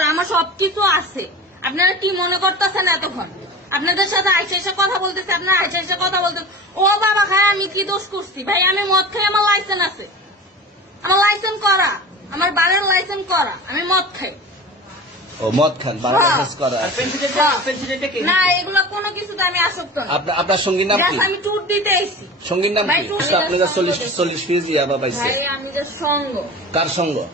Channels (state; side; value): normal; both; correlation 0.34